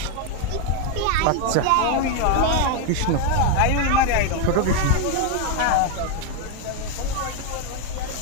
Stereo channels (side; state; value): both; different; correlation 0.01